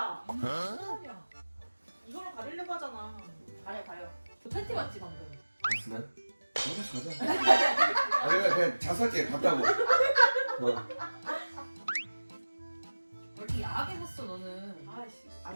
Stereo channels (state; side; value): inverted; both; correlation -1.00